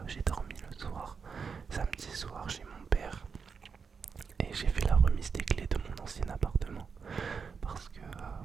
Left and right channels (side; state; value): left; quieter; 5.7 dB